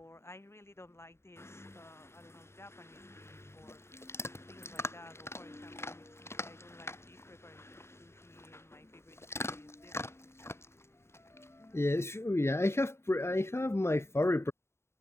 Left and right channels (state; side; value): late; right; 0.13 ms